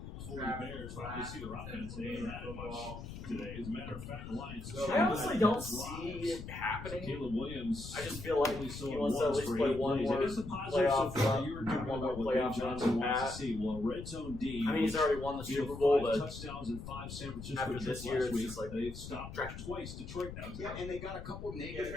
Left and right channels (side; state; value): left; noise; rumble, 10 dB below the sound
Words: for the Bears. Obviously, their offense they ain't had much today. As a matter of fact, the Lions. I honestly don't see it happening. Caleb Williams. I just feel like he wants to at least play one more It is a positive playoff so far. run, You were talking one more about what playoff Dave run Johnson than wants to that. see. Well, Red Zone D. I mean, he's already won the he had Super Bowl, 5 but touchdowns and 5 San Francisco after this trips year, last it's week. just like They've stopped twice Detroit now. Yeah, and they got a couple